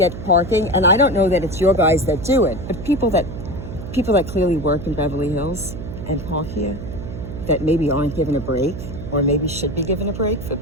parking, and I don't know that it's your guys that do it, but people that clearly work in Beverly Hills and park here that maybe aren't given a break, or maybe should be given a break for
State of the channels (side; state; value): right; noise; hum, 9 dB below the sound